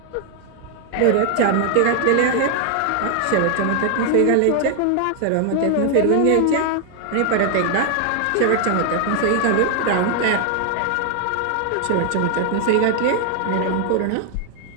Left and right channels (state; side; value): different; both; correlation 0.00